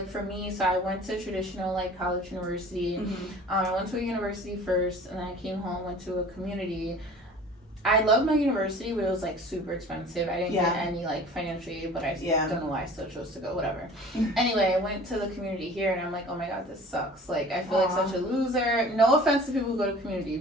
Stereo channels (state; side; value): normal; both; correlation 0.45